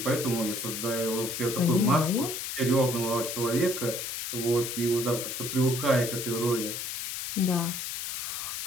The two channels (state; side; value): noise; left; hiss, 5 dB below the sound